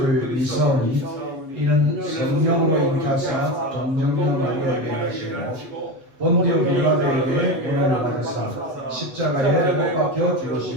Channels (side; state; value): left; late; 7.5 ms